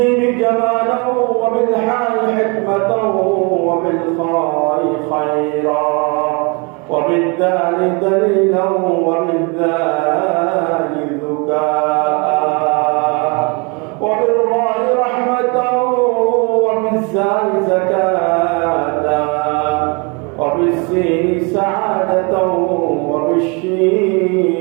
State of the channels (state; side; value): quieter; left; 31.4 dB